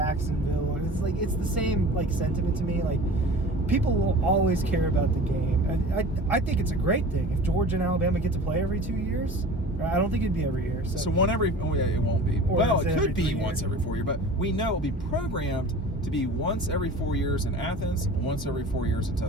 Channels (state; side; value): normal; both; correlation 0.40